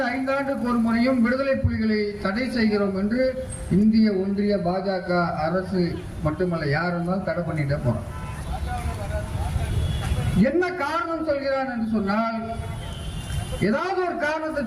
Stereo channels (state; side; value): identical; both; correlation 1.00